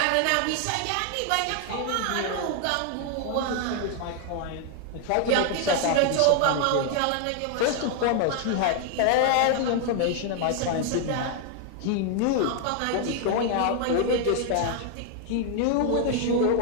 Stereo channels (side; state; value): both; different; correlation 0.00